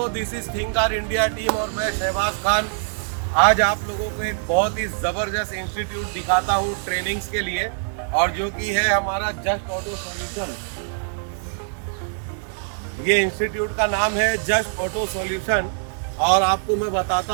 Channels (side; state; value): left; silent; digital silence